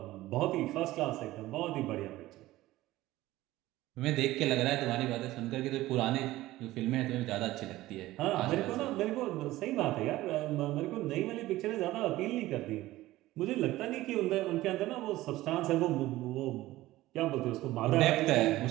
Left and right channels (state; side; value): quieter; left; 16.8 dB